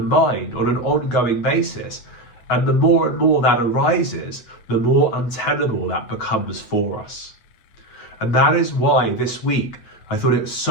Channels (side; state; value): right; late; 9.0 ms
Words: on an ongoing basis. And the more and more that arises, the more untenable that becomes for us. And that is why this week I thought it was